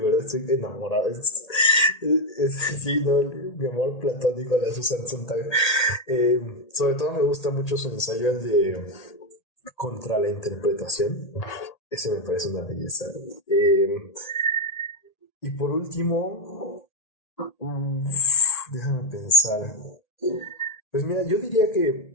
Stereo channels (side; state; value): right; late; 1.8 ms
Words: estoy enamorado. Sí, ¿no? Mi amor platónico a la Susan Sontag. Sobre todo me gusta mucho su ensayo, el de Contra la interpretación. Ese me parece una belleza. Y por último, déjame pensar. Pues mira, yo diría que